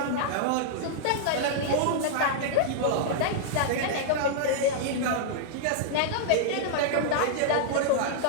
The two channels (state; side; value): different; both; correlation -0.01